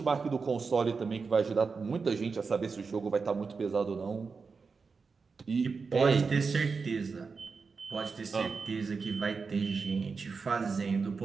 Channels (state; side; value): quieter; left; 4.9 dB